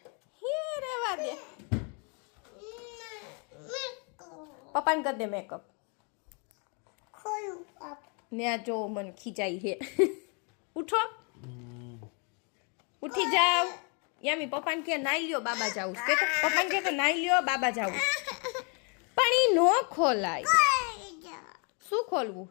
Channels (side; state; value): right; quieter; 36.1 dB